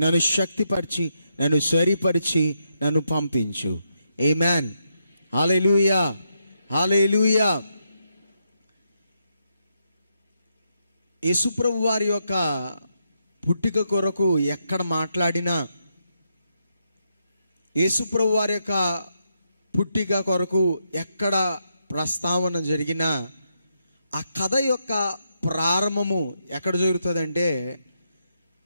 నన్ను శక్తిపరిచి, నన్ను సరిపరిచి, నన్ను పంపించు. ఆమేన్. హల్లెలూయా, హల్లెలూయా. యేసుప్రభు వారి యొక్క పుట్టిక కొరకు ఎక్కడ మాట్లాడినా, యేసుప్రభు వారి యొక్క పుట్టిక కొరకు ఎక్కడ ప్రస్తావన జరిగినా, ఆ కథ యొక్క ప్రారంభము ఎక్కడ జరుగుతుందంటే,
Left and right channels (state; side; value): inverted; both; correlation -0.81